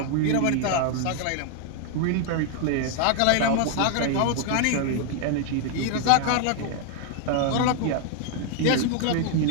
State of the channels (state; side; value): different; both; correlation 0.00